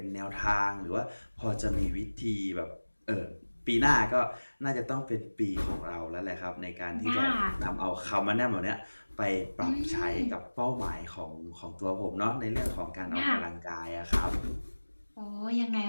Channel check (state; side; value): inverted; both; correlation -1.00